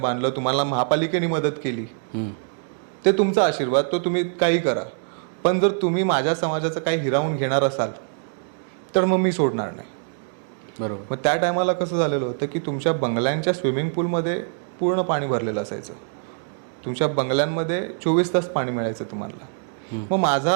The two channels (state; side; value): silent; left; 62 dB below the other